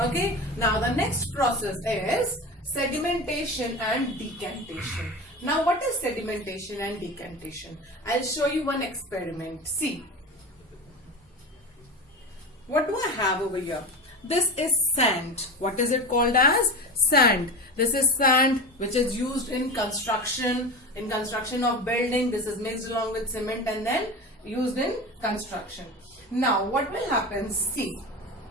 now the next process is sedimentation and decantation. Now what is sedimentation and decantation? I'll show you one experiment. See, what do I have over here? This is sand. What is it called as? Sand. This is sand which is used in construction of building. This is mixed along with cement and then used in construction. Now what will happen? See,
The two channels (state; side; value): normal; both; correlation 0.27